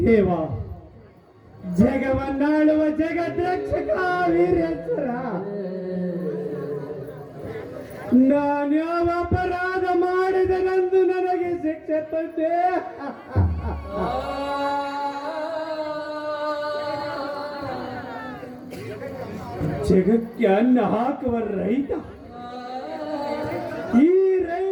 ದೇವ, ಜಗವನ್ನಾಳುವ ಜಗದ್ರಕ್ಷಕ ವೀರೇಶ್ವರ, ನಾನ್ಯಾವ ಅಪರಾಧ ಮಾಡಿದನೆಂದು ನನಗೆ ಶಿಕ್ಷೆ ತಂದೆ. ಜಗಕ್ಕೆ ಅನ್ನ ಹಾಕುವ ರೈತ, ಈ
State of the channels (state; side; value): identical; both; correlation 1.00